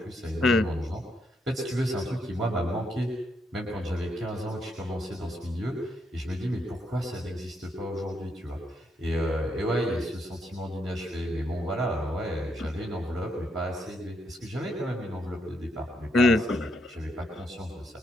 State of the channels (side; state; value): both; normal; correlation 0.77